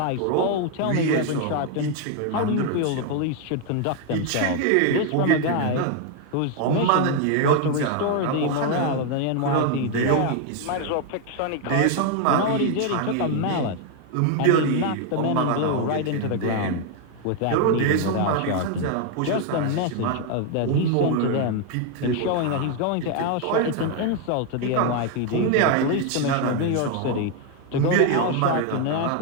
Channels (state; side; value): different; both; correlation 0.01